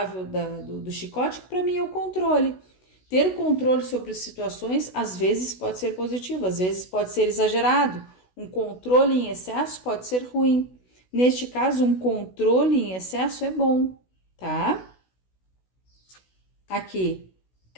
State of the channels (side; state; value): right; late; 16 ms